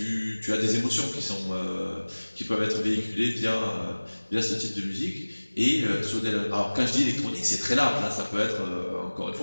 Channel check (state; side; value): inverted; both; correlation -1.00